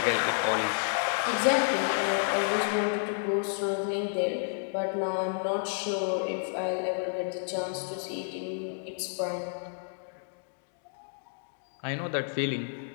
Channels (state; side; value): silent; right; digital silence